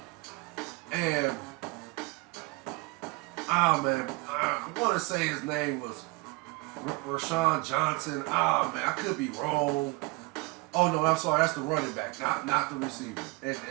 And, I want to say his name was Rashawn Johnson. Man, I could be wrong. Oh, no, I'm sorry. That's the running back, not the receiver. And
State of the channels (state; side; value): quieter; left; 26.0 dB